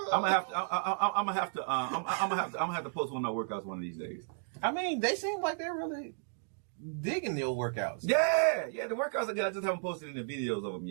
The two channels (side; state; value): left; silent; digital silence